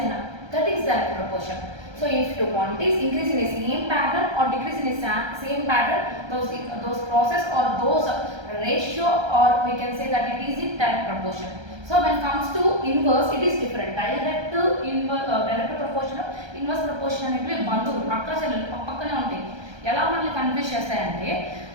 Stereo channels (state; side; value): late; left; 1.3 ms